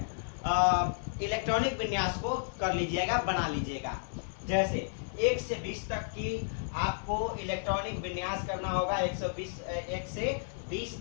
इलेक्ट्रॉनिक विन्यास को कर लीजिएगा, बना लीजिएगा। जैसे 1 से 20 तक की आपको इलेक्ट्रॉनिक विन्यास करना होगा। 1 से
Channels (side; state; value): right; silent; 55 dB below the other